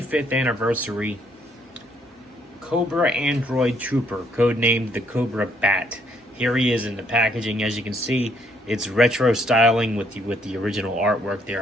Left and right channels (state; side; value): normal; both; correlation 0.68